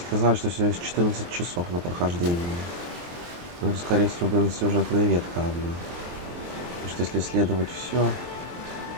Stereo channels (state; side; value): late; left; 23 ms